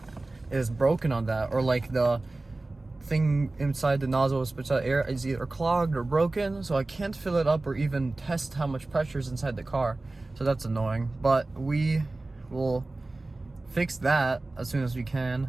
is broken on that, or like the thing inside the nozzle spits out air is either clogged or broken, so I can't fill it up or even test how much pressure is inside the car. So that's annoying, but we will fix that as soon as we can,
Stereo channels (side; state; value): left; quieter; 3.0 dB